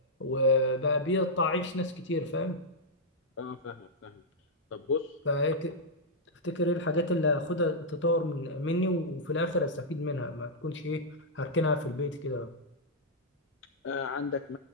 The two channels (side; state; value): both; normal; correlation -0.07